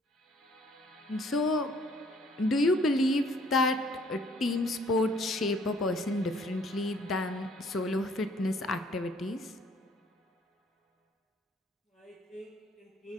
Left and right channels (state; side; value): normal; both; correlation 0.60